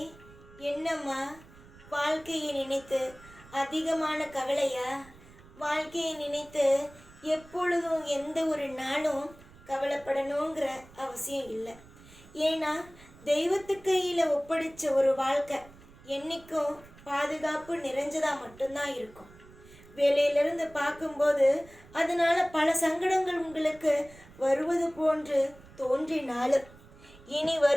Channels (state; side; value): noise; right; rumble, 22 dB below the sound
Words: என்னம்மா வாழ்க்கையை நினைத்து அதிகமான கவலையா? வாழ்க்கையை நினைத்து எப்பொழுதும் எந்த ஒரு நாளும் கவலைப்படணுங்கிற அவசியம் இல்லை. ஏன்னா தெய்வத்து கையில் ஒப்படைச்ச ஒரு வாழ்க்கை என்றைக்கும் பாதுகாப்பு நிறைஞ்சதாக மட்டும்தான் இருக்கும். வேலையிலிருந்து பார்க்கும்போது அதனால் பல சங்கடங்கள் உங்களுக்கு வருவது போன்று தோன்றினாலும் இனி